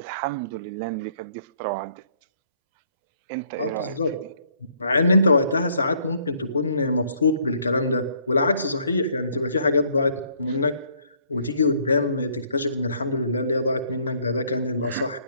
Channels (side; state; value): both; inverted; correlation -0.65